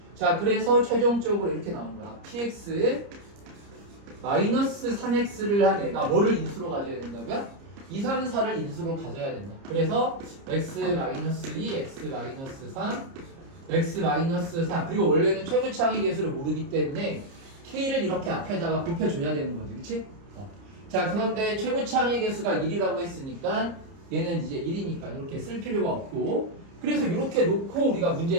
자, 그래서 최종적으로 이렇게 나오는 거야. px 마이너스 3x를 한 애가 뭐를 인수로 가져야 된다고요? 2, 3, 4를 인수로 가져야 된다. 그래서 x-2, x-3, x-4 그리고 원래는 최고차항의 개수를 모르기 때문에 k를 이렇게 앞에다가 곱해줘야 되는 거지. 그치? 자, 그런데 최고차항의 개수가 1이라고 했으니까 얘는 이제 1이니까 이렇게 쓸 필요가 없고 그래서 이렇게 놓고 우리가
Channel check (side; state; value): left; late; 30 ms